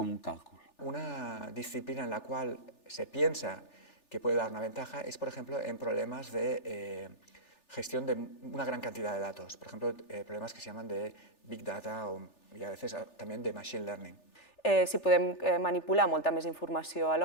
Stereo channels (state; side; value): late; right; 3.4 ms